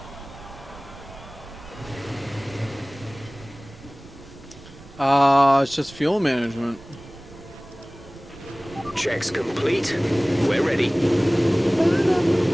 It's just fuel management. Checks complete. We're ready.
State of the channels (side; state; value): right; noise; rumble, 21 dB below the sound